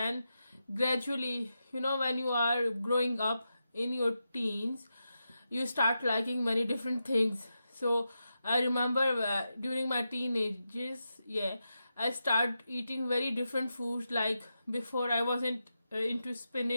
gradually, when you are growing up in your teens, you start liking many different things. So I remember during my teenagers, I start eating very different foods. Like before, I wasn't into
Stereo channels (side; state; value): both; inverted; correlation -0.88